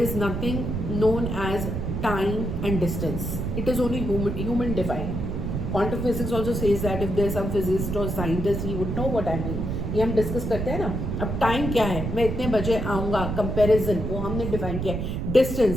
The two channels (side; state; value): right; noise; rumble, 3 dB below the sound